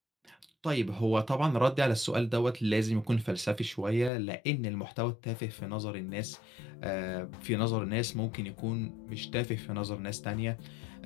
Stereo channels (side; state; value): right; drops out; at 4.1 s